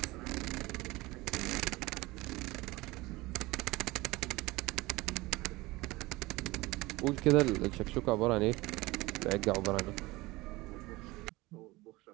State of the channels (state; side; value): quieter; left; 20.9 dB